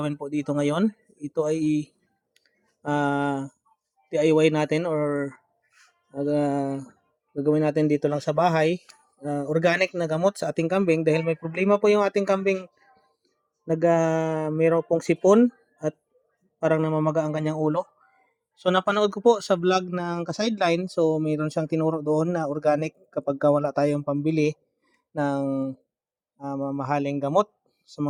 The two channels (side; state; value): both; identical; correlation 1.00